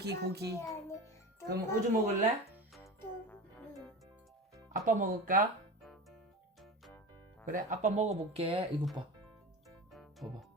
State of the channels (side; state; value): both; normal; correlation 0.29